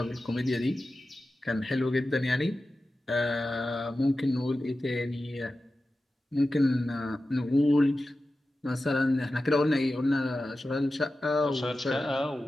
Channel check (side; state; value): both; normal; correlation 0.93